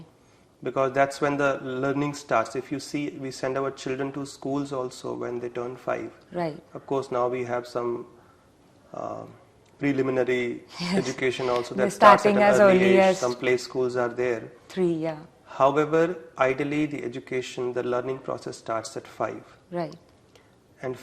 Because that's when the learning starts. If you see, we send our children to schools also when they turn 5. Right. Of course, now we have some preliminary education also that starts at an early age. Some play schools are there. 3, yeah. However, ideally the education, the learning process starts at 5. Right. And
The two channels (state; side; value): identical; both; correlation 1.00